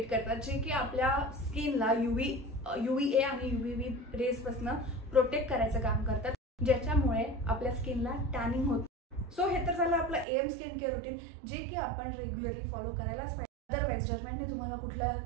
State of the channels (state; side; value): drops out; left; at 10.2 s